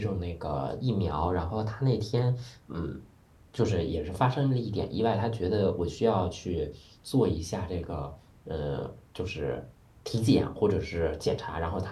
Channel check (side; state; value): both; identical; correlation 1.00